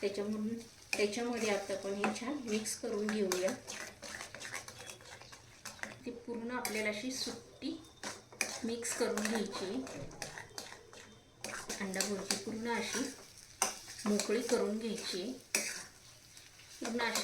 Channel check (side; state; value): both; identical; correlation 1.00